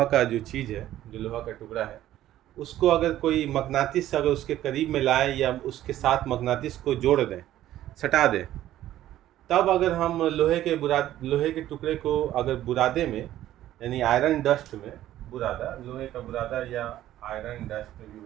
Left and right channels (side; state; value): left; quieter; 13.3 dB